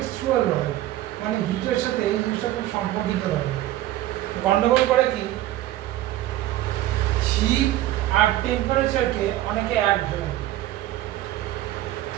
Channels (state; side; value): quieter; left; 14.7 dB